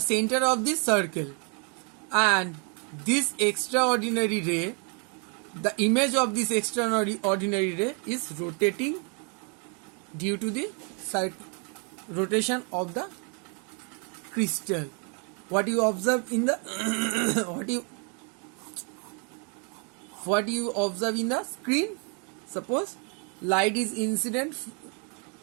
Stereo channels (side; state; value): left; quieter; 37.4 dB